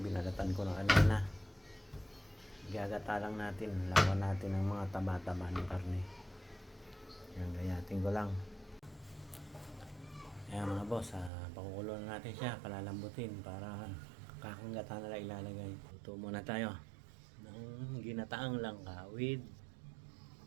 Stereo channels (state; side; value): drops out; left; at 11.3 s